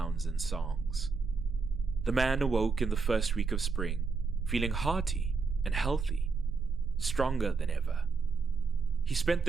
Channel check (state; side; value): quieter; left; 4.7 dB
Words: and songs. The man awoke in the first week of spring, feeling hearty and healthy, stronger than ever. He spent